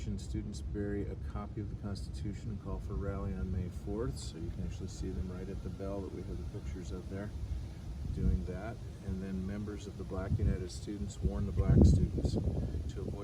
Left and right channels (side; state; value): both; identical; correlation 1.00